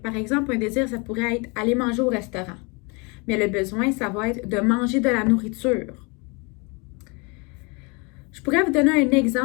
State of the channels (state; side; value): quieter; right; 30.0 dB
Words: exemple, un désir, ça pourrait être aller manger au restaurant. Mais le besoin, ça va être de manger de la nourriture. Je pourrais vous donner un